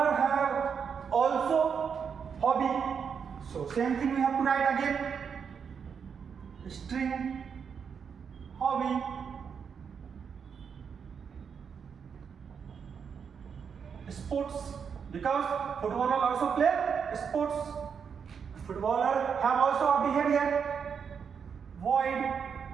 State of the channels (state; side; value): quieter; left; 6.7 dB